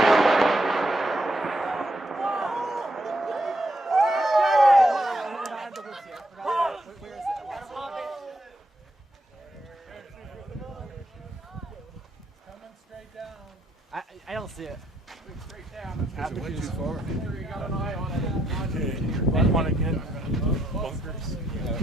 I don't see it. Straight down. It went too far. You got an eye on it. Okay. Want to get bunkers?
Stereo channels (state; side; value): normal; both; correlation 0.77